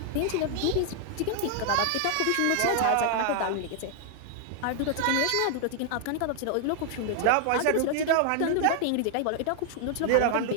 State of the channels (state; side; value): different; both; correlation 0.00